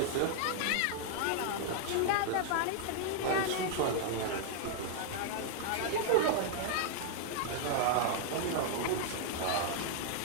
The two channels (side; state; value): both; different; correlation -0.01